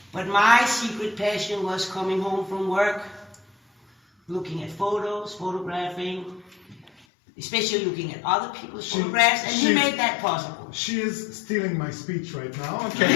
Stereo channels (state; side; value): drops out; right; at 7.1 s